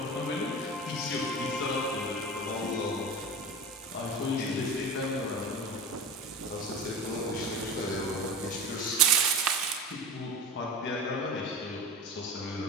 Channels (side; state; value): both; normal; correlation 0.31